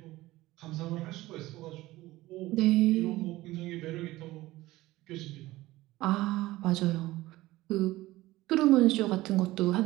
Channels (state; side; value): quieter; left; 17.8 dB